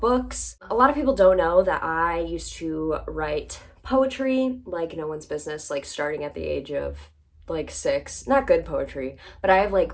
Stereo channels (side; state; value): both; identical; correlation 1.00